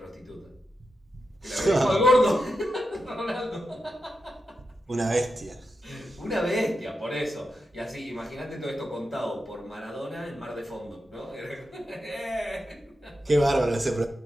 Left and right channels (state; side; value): normal; both; correlation 0.88